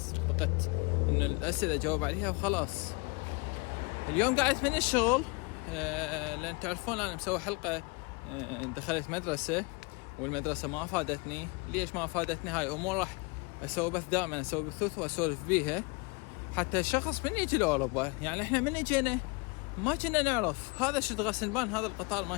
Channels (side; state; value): right; quieter; 29.0 dB